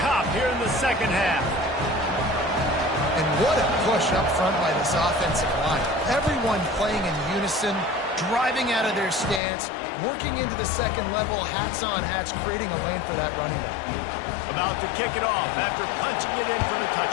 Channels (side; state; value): right; drops out; at 9.4 s